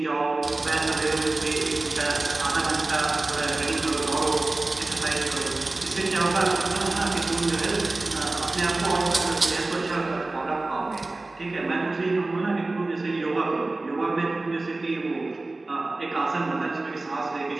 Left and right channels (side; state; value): left; quieter; 3.1 dB